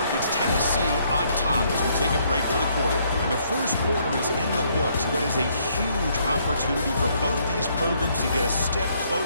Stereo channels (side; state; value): both; inverted; correlation -0.69